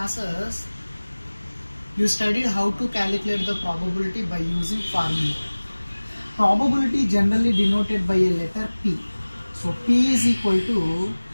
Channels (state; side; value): inverted; both; correlation -1.00